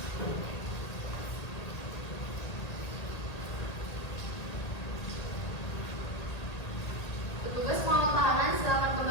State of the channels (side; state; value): right; late; 1.8 ms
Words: Petugas pengawal tahanan silakan